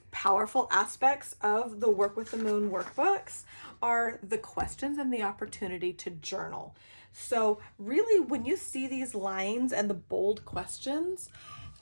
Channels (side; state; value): both; inverted; correlation -1.00